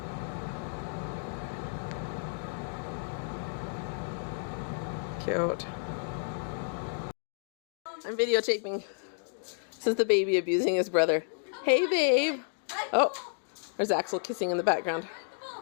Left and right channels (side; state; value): right; silent; digital silence